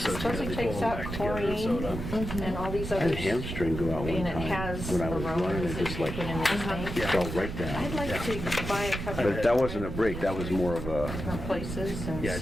sew it supposedly together, takes pull them out back together and sew it up. chlorine and all these I had other. a hamstring go out one And it time has when I was running, aromas it that just you like put in this thing. fell right I'd down. like to buy a couple But that wasn't a break, that was more of a, different places and Yeah,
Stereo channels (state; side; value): noise; right; rumble, 6 dB below the sound